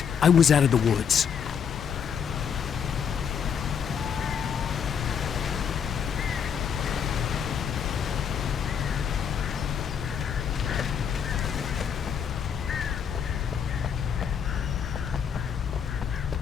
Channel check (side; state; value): right; quieter; 7.4 dB